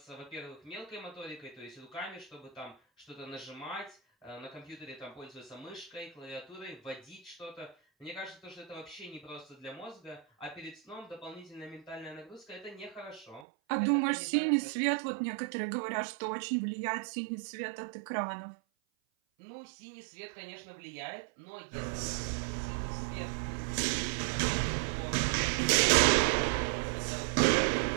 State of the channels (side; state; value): left; drops out; at 13.5 s